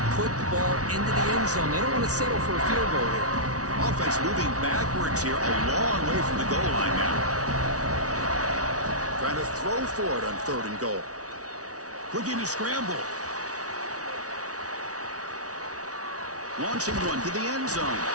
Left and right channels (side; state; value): left; late; 0.67 ms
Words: put the ball into the end zone. They don't want to settle for a field goal here. Offense moving backwards here, a long way from the goal line now. Trying to throw for it on 3rd and goal. Looking to scramble. Launching one to the end zone.